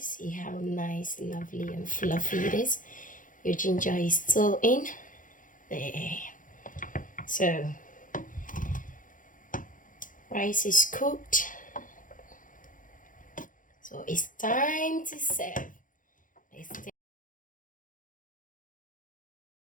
See how nice, lovely and fluffy it is. Your ginger is still in there. So rice is cooked, so it's time to serve.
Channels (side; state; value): right; late; 0.38 ms